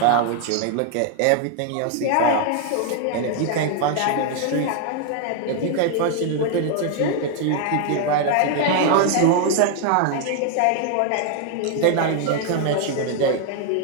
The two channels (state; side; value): different; both; correlation 0.00